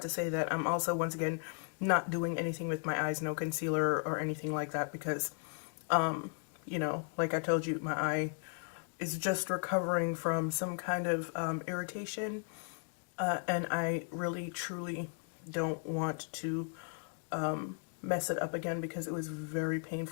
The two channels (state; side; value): silent; right; 54 dB below the other